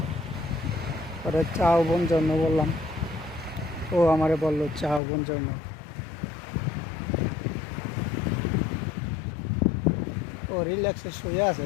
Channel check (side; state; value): right; drops out; at 5.0 s